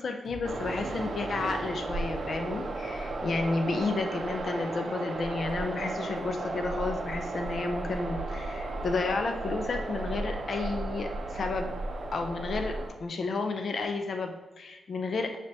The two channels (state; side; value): normal; both; correlation 0.85